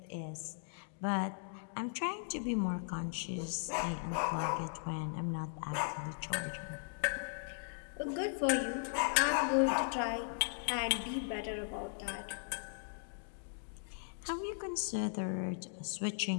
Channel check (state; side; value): silent; right; digital silence